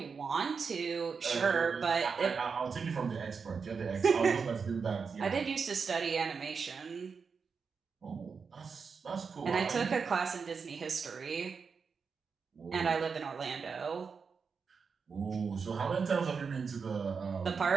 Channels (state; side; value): quieter; left; 5.5 dB